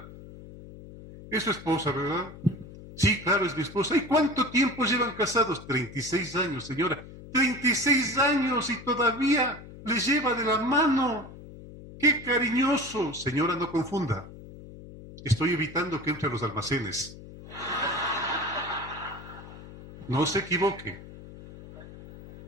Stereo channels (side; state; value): left; noise; hum, 16 dB below the sound